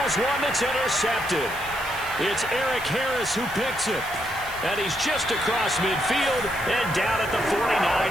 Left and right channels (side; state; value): right; noise; hiss, 15 dB below the sound